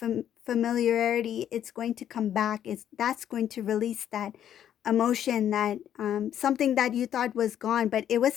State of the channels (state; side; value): quieter; right; 10.3 dB